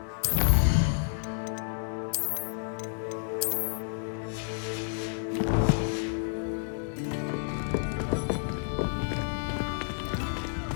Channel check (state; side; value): silent; right; digital silence